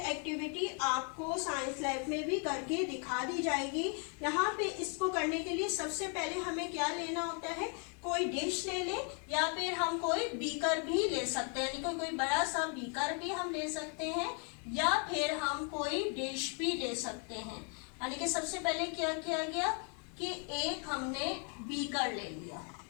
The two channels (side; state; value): right; quieter; 39.0 dB